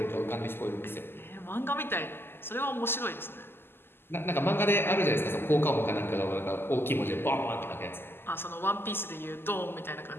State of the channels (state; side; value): late; right; 0.11 ms